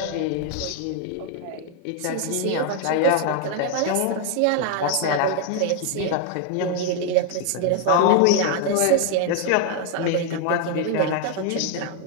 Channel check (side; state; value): both; different; correlation 0.00